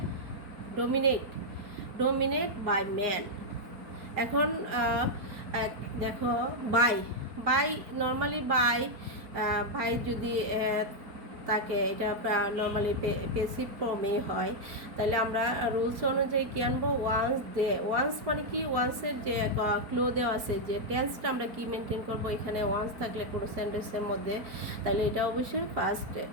dominate by man. এখন দেখো বাই নর্মালি বাই যদি তাকে এটা নর্মালি পেসিভ ফর্মে হয়, তাহলে আমরা রুলস অনুযায়ী কী আনবো, ওয়ান্স মানে কি, ওয়ান্সের যে ক্লো দেওয়া আছে, যে টেন্সটা আমরা কি মেনটেন করবো, এখানে ওয়ান্স থাকলে কোনো সেন্টেন্সের মধ্যে, তাহলে এটা অবশ্যই ফার্স্ট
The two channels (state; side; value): late; left; 4.3 ms